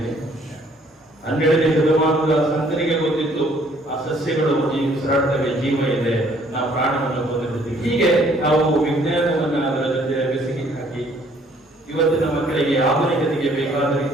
12ನೇ ಶತಮಾನದ ಸಂತನಿಗೆ ಗೊತ್ತಿತ್ತು ಆ ಸಸ್ಯಗಳು ಉಸಿರಾಡ್ತವೆ, ಜೀವ ಇದೆ, ನಾವು ಪ್ರಾಣವನ್ನು ಹೊಂದಿರ್ತೀವಿ. ಹೀಗೆ ನಾವು ವಿಜ್ಞಾನವನ್ನ ಅದರ ಜೊತೆ ಬೆಸಗಿ ಹಾಕಿ ಇವತ್ತಿನ ಮಕ್ಕಳಿಗೆ ಆಧುನಿಕತೆಗೆ ಬೇಕಾದ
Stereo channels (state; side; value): normal; both; correlation 0.61